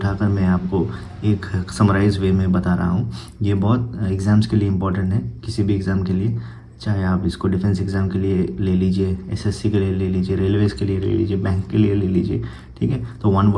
मैं आपको एक समराइज वे में बता रहा हूँ। ये बहुत एग्ज़ाम्स के लिए इम्पोर्टेंट है, किसी भी एग्ज़ाम के लिए, चाहे आप इसको डिफेंस एग्ज़ाम के लिए ले लीजिए, एसएससी के लिए ले लीजिए, रेलवेज़ के लिए ले लीजिए, बैंक के लिए ले लीजिए। ठीक है, तो one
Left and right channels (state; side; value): identical; both; correlation 1.00